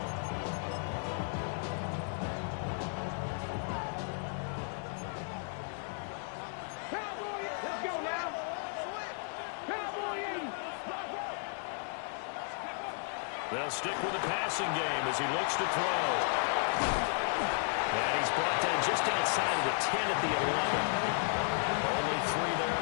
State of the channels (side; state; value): right; silent; 55 dB below the other